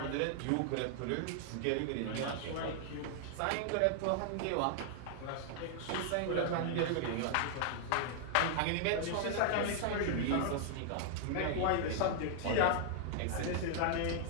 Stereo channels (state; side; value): different; both; correlation -0.01